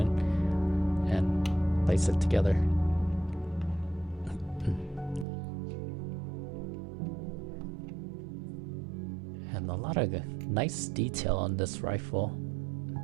and place it together. And a lot of nice detail on this rifle.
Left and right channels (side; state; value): left; drops out; at 5.2 s